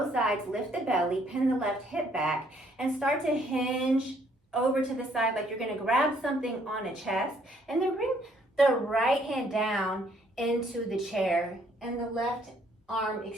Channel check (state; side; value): normal; both; correlation 0.66